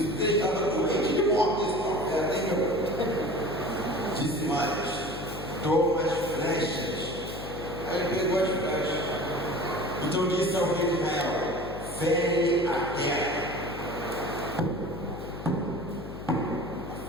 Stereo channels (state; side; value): noise; left; hum, 10 dB below the sound